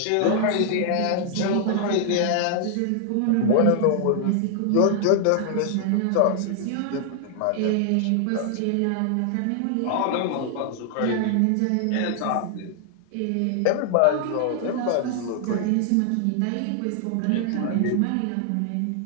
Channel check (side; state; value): both; different; correlation 0.00